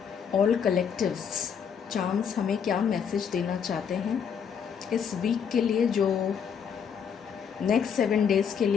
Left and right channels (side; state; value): right; quieter; 7.3 dB